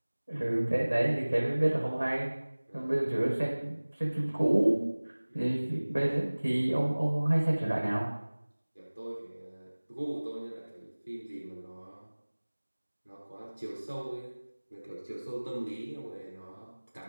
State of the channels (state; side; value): inverted; both; correlation -1.00